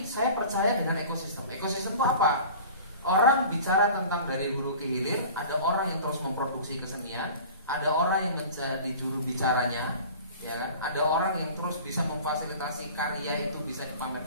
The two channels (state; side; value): inverted; both; correlation -0.41